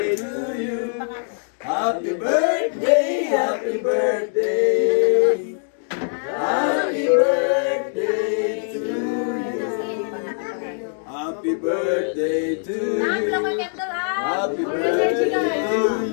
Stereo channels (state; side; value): silent; right; digital silence